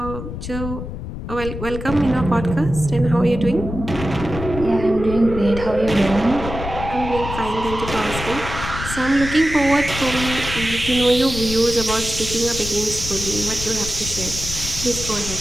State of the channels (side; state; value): left; noise; rumble, 8 dB below the sound